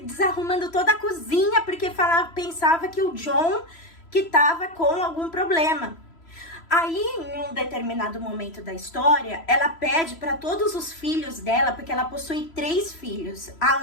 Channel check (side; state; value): right; late; 3.0 ms